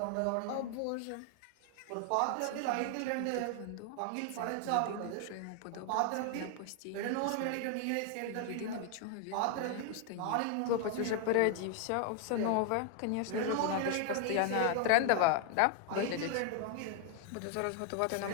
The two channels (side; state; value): both; different; correlation 0.00